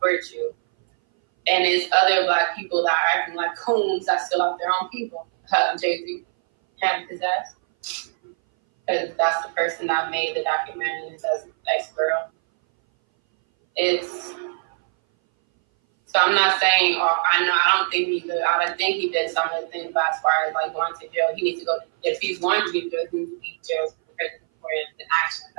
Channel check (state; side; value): silent; left; 60 dB below the other